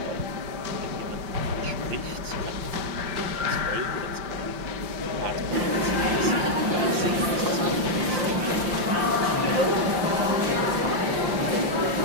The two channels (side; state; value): left; late; 5.7 ms